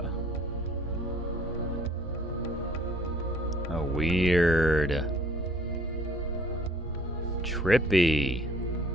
Oh, weird. Trippy.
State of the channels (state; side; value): normal; both; correlation 0.56